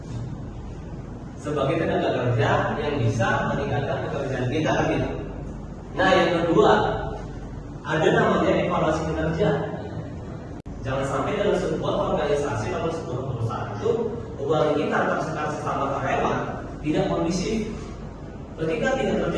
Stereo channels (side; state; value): both; identical; correlation 1.00